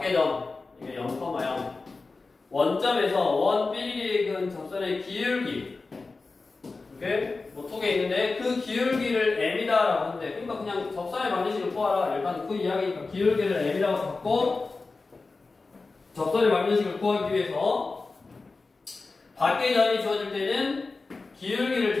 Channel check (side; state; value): right; quieter; 3.9 dB